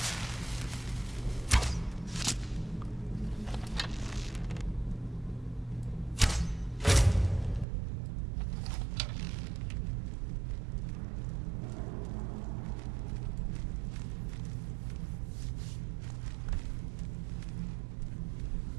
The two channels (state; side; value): drops out; left; at 7.7 s